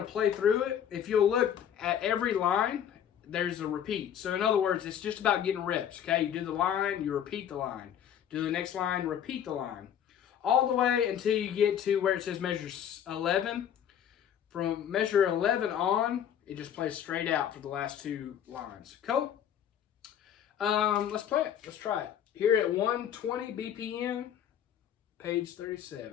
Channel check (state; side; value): quieter; right; 9.4 dB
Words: play through it. If you'll look at every line, there's a repeat. So in other words, it's just about getting reps, okay? You do the line, you repeat the line. Do the next line, repeat the line. All the way until you get to where it says measure 11. From measure 11 on, it just plays straight out for the last 2 lines. Cool? Let's play it. Let's try it. Here at 120 BPM, page